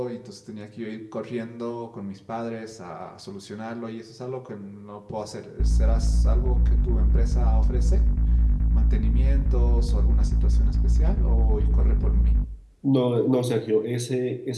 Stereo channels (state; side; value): identical; both; correlation 1.00